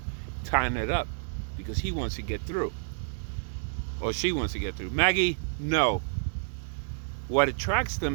tying it up, because he wants to get through. Or she wants to get through. Maggie, no. What attracts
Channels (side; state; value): left; silent; 58 dB below the other